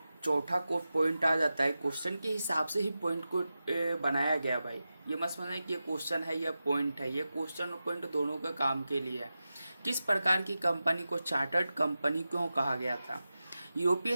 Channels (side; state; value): both; inverted; correlation -0.93